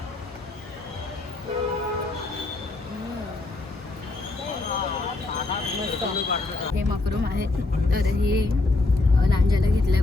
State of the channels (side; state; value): right; quieter; 3.3 dB